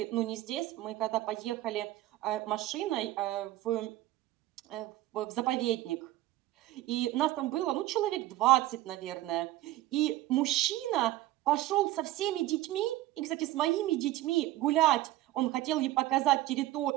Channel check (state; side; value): quieter; left; 15.8 dB